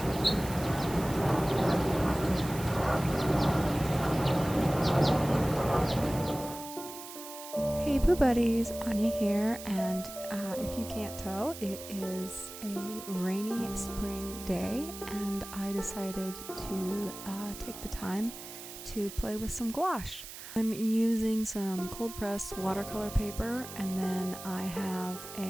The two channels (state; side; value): noise; right; hiss, 12 dB below the sound